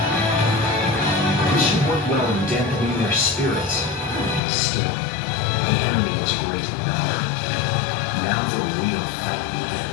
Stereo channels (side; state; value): right; drops out; at 4.4 s